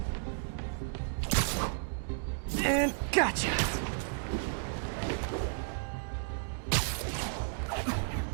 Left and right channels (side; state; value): left; silent; digital silence